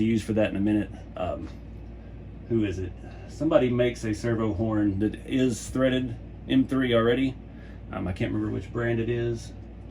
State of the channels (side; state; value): both; identical; correlation 1.00